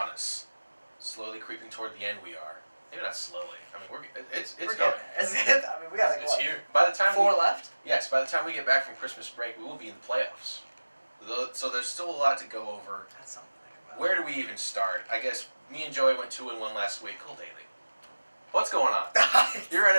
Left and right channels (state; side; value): inverted; both; correlation -1.00